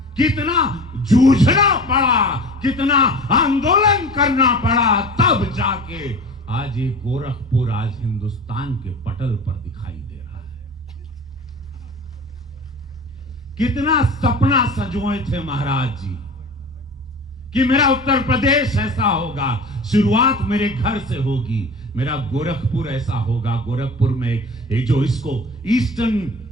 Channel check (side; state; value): both; normal; correlation 0.36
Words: कितना जूझना पड़ा, कितना आंदोलन करना पड़ा, तब जाके आज ये गोरखपुर आज हिंदुस्तान के पटल पर दिखाई दे रहा है। कितना सपना सजोए थे महाराज जी कि मेरा उत्तर प्रदेश ऐसा होगा, शुरुआत मेरे घर से होगी, मेरा गोरखपुर ऐसा होगा। गोरखपुर में एक जो इसको ईस्टर्न